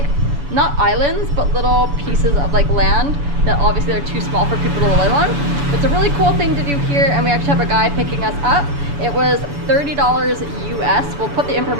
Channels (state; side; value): late; left; 7.0 ms